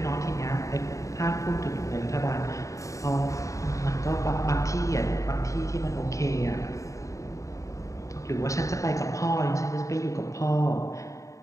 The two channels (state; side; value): late; right; 0.16 ms